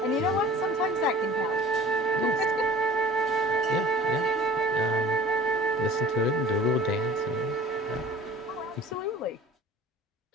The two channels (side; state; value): both; normal; correlation 0.45